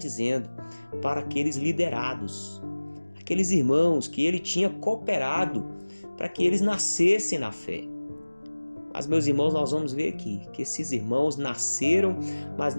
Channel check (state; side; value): inverted; both; correlation -1.00